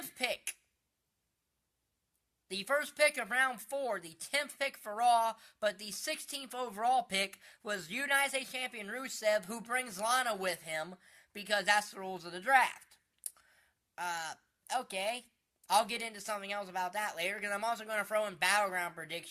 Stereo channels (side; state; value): both; identical; correlation 1.00